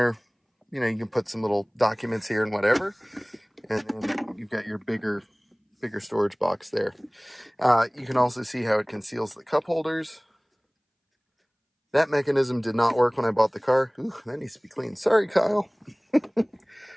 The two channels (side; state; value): both; identical; correlation 1.00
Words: you know, you can put some little documents here and whatever. And then you've got your bigger storage box there. You can also see how it conceals the cup holders. That mechanism did not work when I bought the car. Ooh, that needs to be cleaned. Sorry, Kyle.